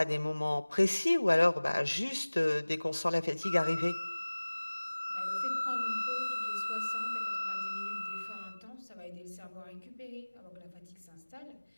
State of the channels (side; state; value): both; inverted; correlation -1.00